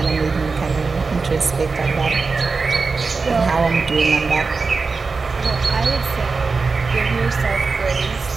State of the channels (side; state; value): left; quieter; 4.4 dB